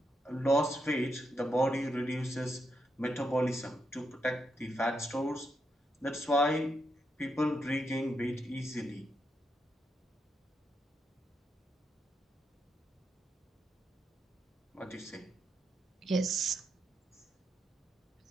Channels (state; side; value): normal; both; correlation 0.82